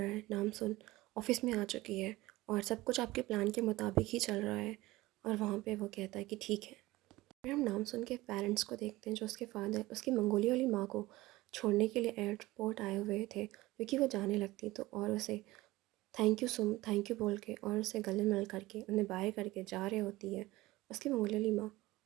है। नाम सुन ऑफिस में आ चुकी है और सब कुछ आपके प्लान के मुताबिक ही चल रहा है। और वहाँ पे वो कहता है कि ठीक है। फिर हम नाम सुन के पेरेंट्स को देखते हैं जो उसके फादर उसकी मंगोलिया वाली माँ को छोड़ने के लिए एयरपोर्ट आए हुए थे, क्योंकि वो जाने लगती तो और उसे थैंक यू बोल के और उसे गले मिल करके उन्हें बाय करके जा रही होती है। उसकी मंगोलियाली माँ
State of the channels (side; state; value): left; quieter; 18.8 dB